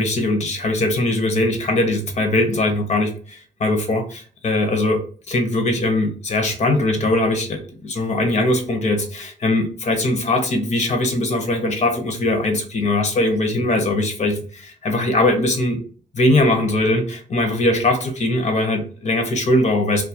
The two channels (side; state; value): both; normal; correlation 0.48